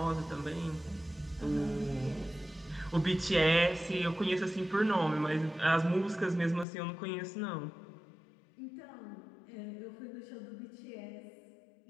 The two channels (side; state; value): right; drops out; at 6.7 s